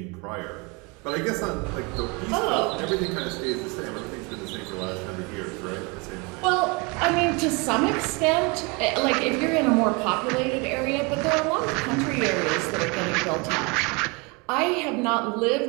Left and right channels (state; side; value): quieter; left; 29.1 dB